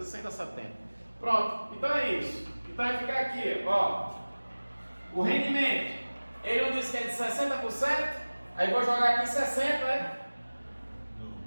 100 dá 70. Pronto. Então é isso. Então vai ficar aqui, ó. O rendimento. Ele não disse que é de 60%? Aí vou jogar aqui 60, né?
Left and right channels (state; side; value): inverted; both; correlation -1.00